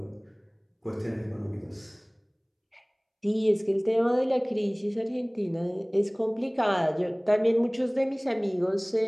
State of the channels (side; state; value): both; identical; correlation 1.00